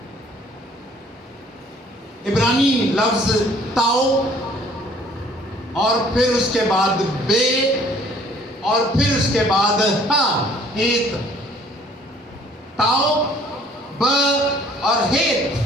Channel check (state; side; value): normal; both; correlation 0.57